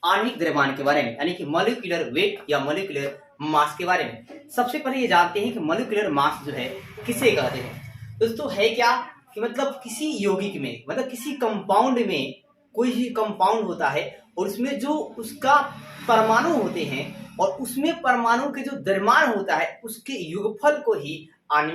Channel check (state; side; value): identical; both; correlation 1.00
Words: आणविक द्रव्यमान के बारे में, यानी कि मॉलिक्यूलर वेट या मॉलिक्यूलर मास के बारे में। सबसे पहले ये जानते हैं कि मॉलिक्यूलर मास जो है किसे कहते हैं। दोस्तों है क्या कि मतलब किसी यौगिक में, मतलब किसी कंपाउंड में कोई भी कंपाउंड होता है और उसमें जो उसका परमाणु होते हैं और उसमें परमाणु के जो द्रव्यमान होता है उसके योगफल को ही